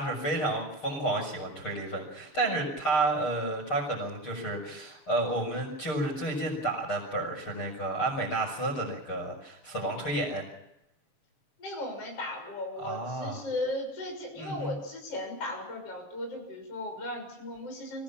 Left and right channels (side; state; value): right; late; 6.7 ms